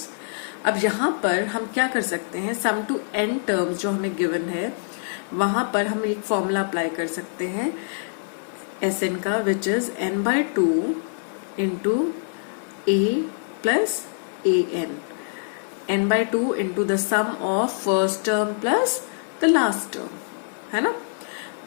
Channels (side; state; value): right; silent; digital silence